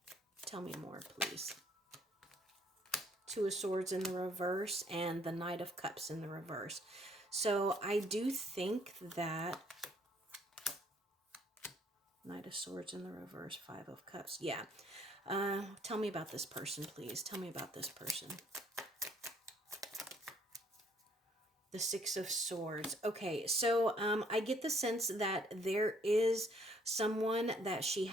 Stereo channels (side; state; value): both; normal; correlation 0.64